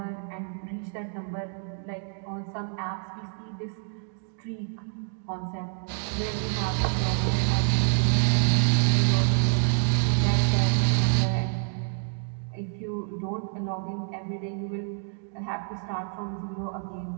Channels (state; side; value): silent; left; 57 dB below the other